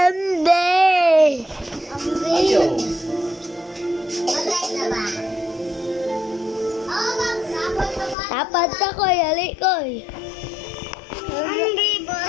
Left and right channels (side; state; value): right; drops out; at 8.2 s